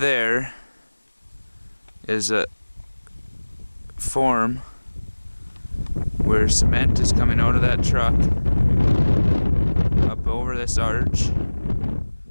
is a form where cement is coming out of that truck up over this arch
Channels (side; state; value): both; inverted; correlation -1.00